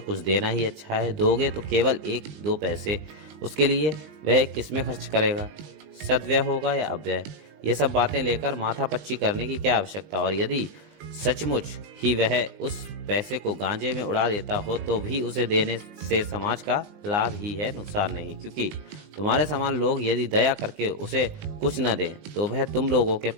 देना ही अच्छा है। दोगे तो केवल 1-2 पैसे, उसके लिए वह किसमें खर्च करेगा, सद्व्यय होगा या अव्यय। ये सब बातें लेकर माथापच्ची करने की क्या आवश्यकता। और यदि सचमुच ही वह उस पैसे को गांजे में उड़ा देता हो तो भी उसे देने से समाज का लाभ ही है, नुकसान नहीं। क्योंकि तुम्हारे समान लोग यदि दया करके उसे कुछ न दें तो वह तुम लोगों के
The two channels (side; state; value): left; late; 20 ms